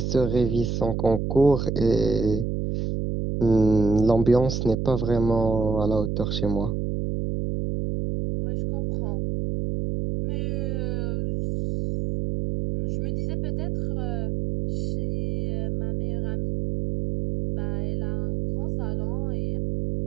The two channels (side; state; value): right; noise; hum, 1 dB below the sound